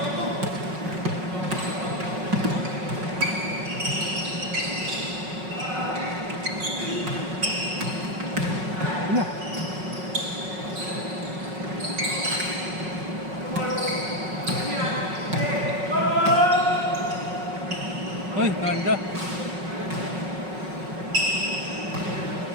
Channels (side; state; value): left; late; 5.4 ms